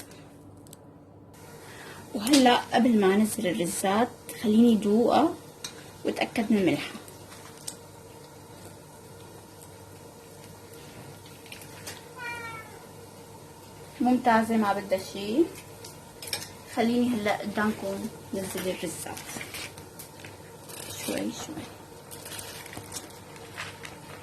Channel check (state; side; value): identical; both; correlation 1.00